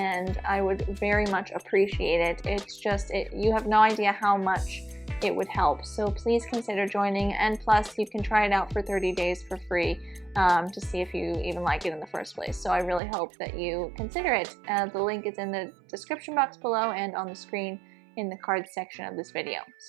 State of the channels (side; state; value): left; drops out; at 13.0 s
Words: I would very much appreciate it. It's just, you have no idea how much it would help. So please consider joining, and plus you can try it out for 30 days for free to see if you even like it in the first place. So I really hope that you consider it. The link is in the description box below and on the screen in the cards section of this video.